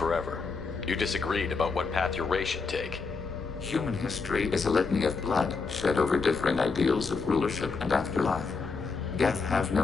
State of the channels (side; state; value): right; quieter; 4.6 dB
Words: You disagreed about what path your race should take. Human history is a litany of blood shed over differing ideals of rulership and afterlife. Geth have